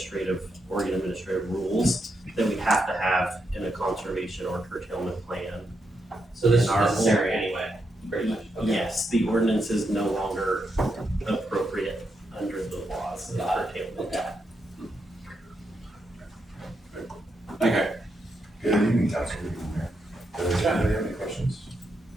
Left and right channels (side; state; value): both; normal; correlation 0.83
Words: Oregon administrative rules that we have to have in a conservation or curtailment plan. So this is And our necessary anyway, pretty much. Okay. Yes, the ordinance is no longer appropriate under the laws of curtailment. Okay. Good evening, Councilor. Does anybody have any questions?